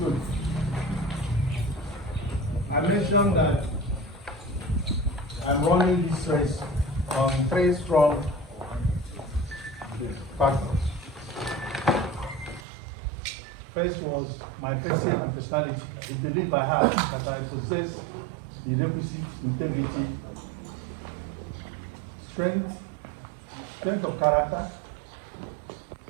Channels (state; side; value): drops out; left; at 12.7 s